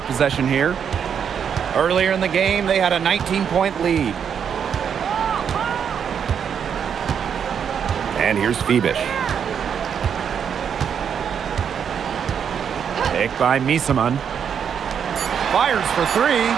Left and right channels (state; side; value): quieter; left; 7.7 dB